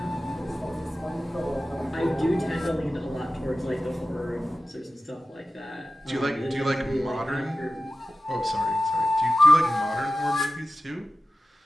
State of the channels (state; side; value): normal; both; correlation 0.94